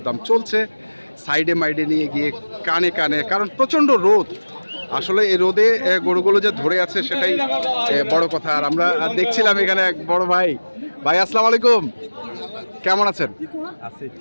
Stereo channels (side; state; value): both; inverted; correlation -1.00